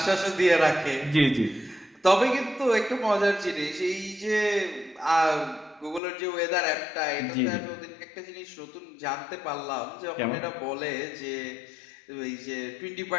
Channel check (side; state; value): right; drops out; at 6.0 s